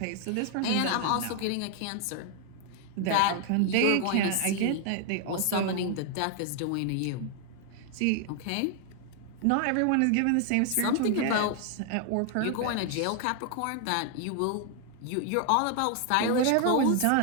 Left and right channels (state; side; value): different; both; correlation 0.00